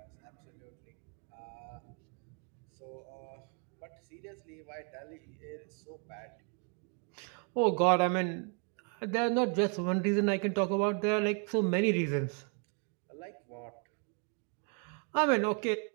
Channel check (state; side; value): quieter; left; 39.3 dB